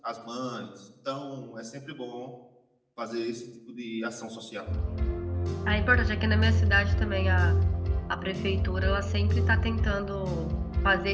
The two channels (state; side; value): identical; both; correlation 1.00